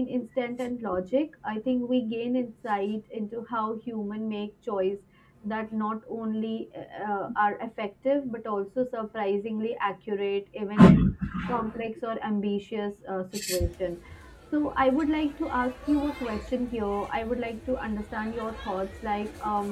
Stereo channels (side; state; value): both; identical; correlation 1.00